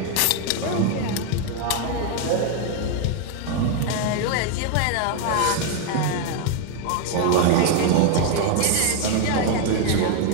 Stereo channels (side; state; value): both; different; correlation 0.01